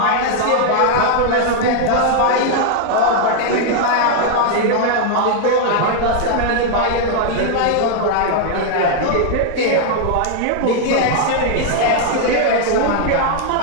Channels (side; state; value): both; different; correlation 0.00